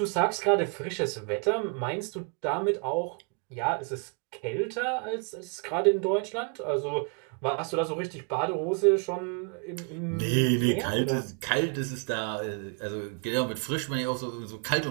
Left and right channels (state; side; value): quieter; left; 39.3 dB